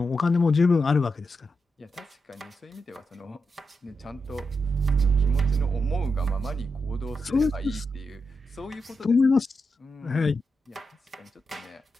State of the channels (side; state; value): both; normal; correlation 0.86